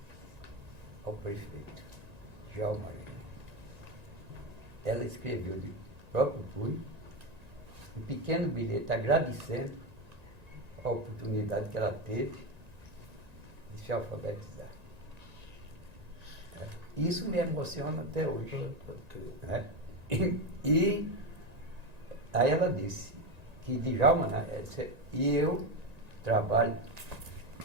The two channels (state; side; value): late; left; 1.9 ms